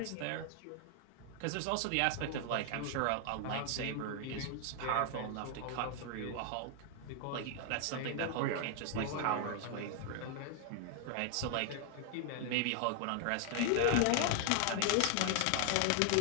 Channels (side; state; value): both; different; correlation 0.00